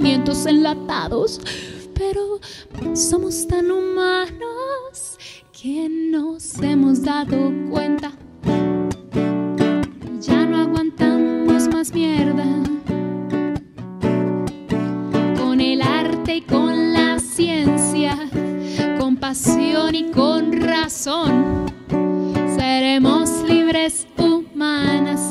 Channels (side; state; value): both; identical; correlation 1.00